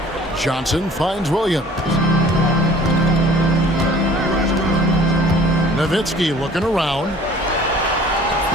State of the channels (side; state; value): both; normal; correlation 0.50